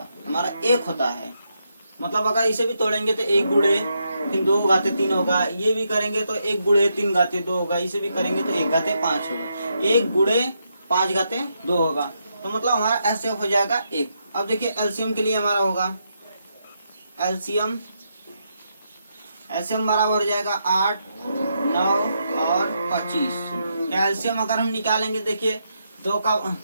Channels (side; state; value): both; inverted; correlation -0.81